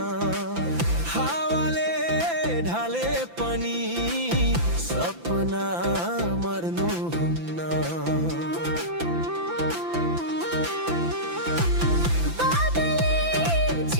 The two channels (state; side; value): late; left; 5.9 ms